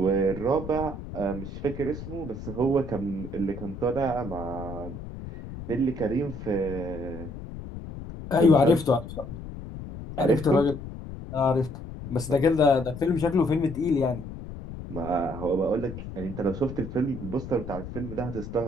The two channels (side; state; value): left; noise; rumble, 10 dB below the sound